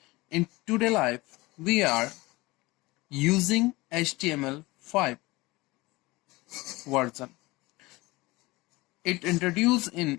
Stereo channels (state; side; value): quieter; right; 21.6 dB